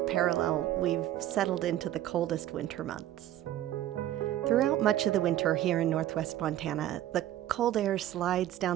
parallel, we've settled into the coldest winter months. Throughout much of the winter here in northwest Montana, the cold air slides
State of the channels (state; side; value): quieter; left; 13.1 dB